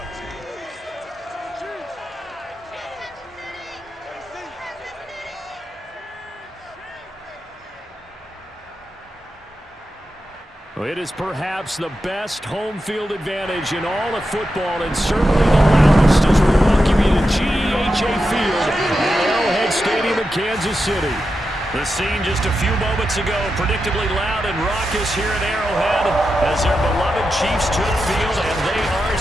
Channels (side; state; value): both; normal; correlation 0.89